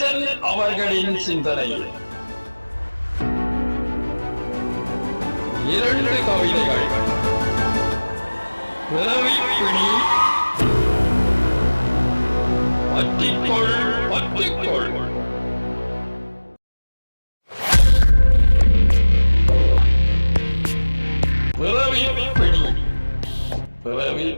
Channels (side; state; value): both; inverted; correlation -1.00